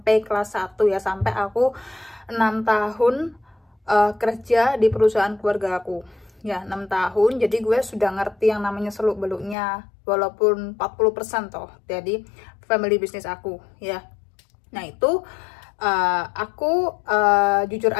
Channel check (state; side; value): drops out; right; at 9.6 s